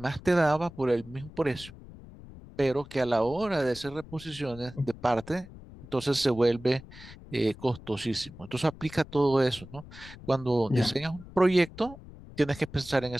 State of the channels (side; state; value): left; noise; rumble, 17 dB below the sound